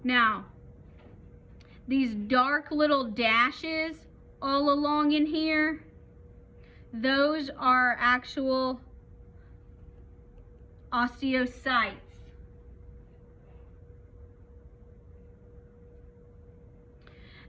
Now, these dark little dashes all along in here, those are actual osteocytes.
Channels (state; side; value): identical; both; correlation 1.00